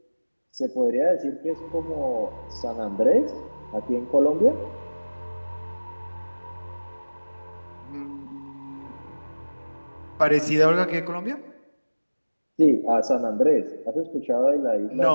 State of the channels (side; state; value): both; inverted; correlation -1.00